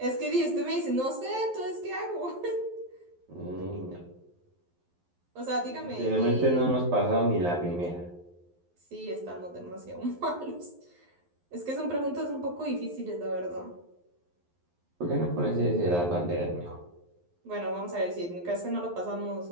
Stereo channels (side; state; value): left; late; 11 ms